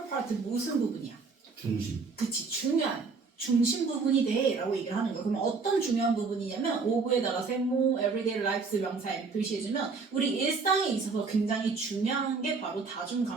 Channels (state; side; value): quieter; left; 4.6 dB